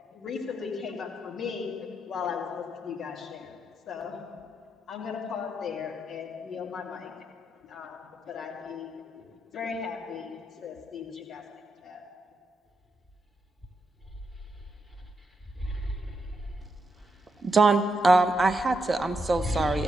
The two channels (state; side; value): normal; both; correlation 0.82